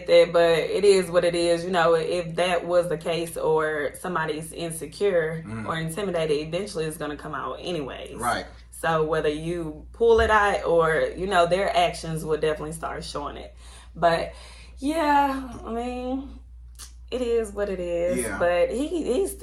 that, but it is what it is. You know, if that was the case, or somebody's insecure or intimidated, eventually it's going to come out anyways. Right. So whether you pull it out or, you know, their actions will definitely start showing it. But yeah, I mean, it is what it is. Yeah. But he's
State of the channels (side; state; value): both; identical; correlation 1.00